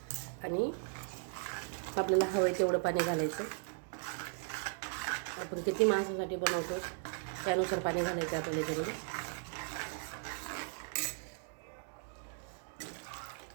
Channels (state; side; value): silent; left; 53 dB below the other